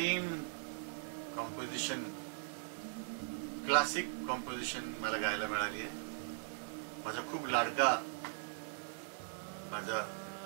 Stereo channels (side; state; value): left; silent; digital silence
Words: कॉम्पोजिशन, क्लासिक कॉम्पोजिशन मला गायला मिळाली आहे. माझा खूप लाडका, माझा